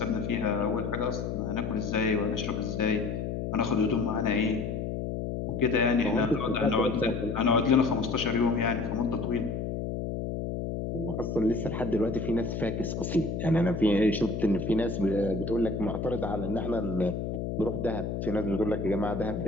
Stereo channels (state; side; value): noise; left; hum, 3 dB below the sound